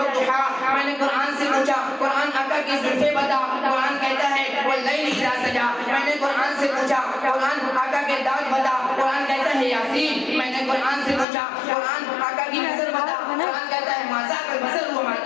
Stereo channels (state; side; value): drops out; right; at 11.2 s